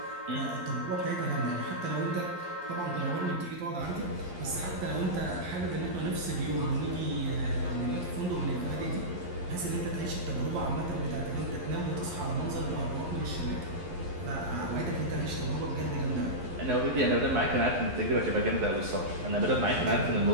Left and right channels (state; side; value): late; left; 11 ms